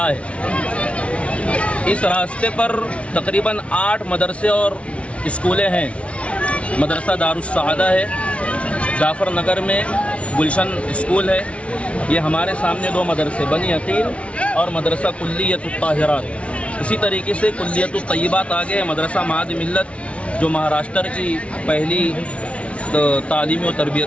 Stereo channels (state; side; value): late; right; 0.062 ms